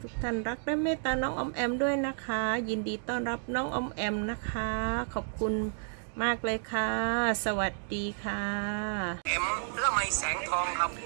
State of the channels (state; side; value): silent; left; digital silence